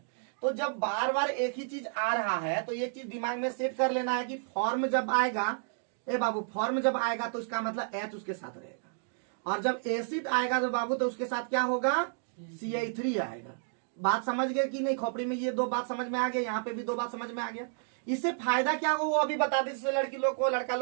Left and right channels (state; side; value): silent; left; digital silence